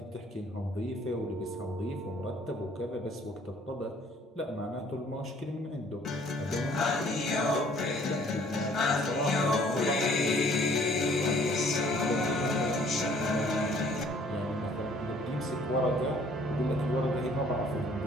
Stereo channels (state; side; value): normal; both; correlation 0.58